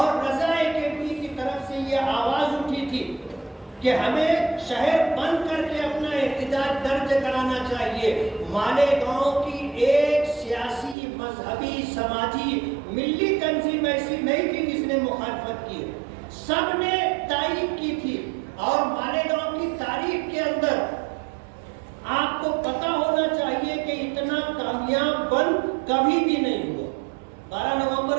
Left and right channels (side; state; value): left; drops out; at 11.0 s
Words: رضا کیفی کی طرف سے یہ آواز اٹھی تھی کہ ہمیں شہر بند کر کے اپنا احتجاج درج کرانا چاہیے. مالیگاؤں کی ایک سیاسی، مذہبی، سماجی، ملی تنظیم ایسی نہیں تھی جس نے مخالفت کی، سب نے تائید کی تھی. اور مالیگاؤں کی تاریخ کے اندر آپ کو پتا ہونا چاہیے کہ اتنا کامیاب بند کبھی بھی نہیں ہوا. 12